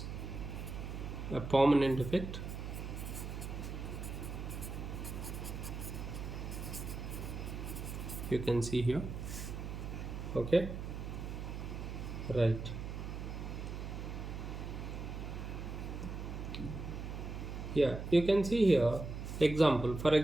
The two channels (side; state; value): right; noise; hum, 6 dB below the sound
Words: a permanent effect. You can see here. Okay, right. Yeah, you can see here example. For